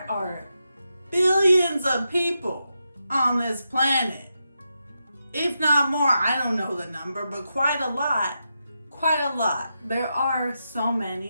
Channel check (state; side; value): inverted; both; correlation -0.86